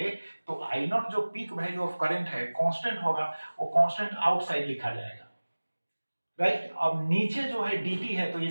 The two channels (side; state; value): both; inverted; correlation -1.00